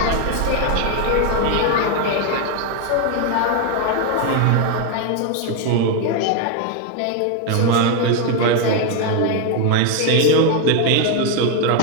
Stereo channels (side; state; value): both; different; correlation 0.01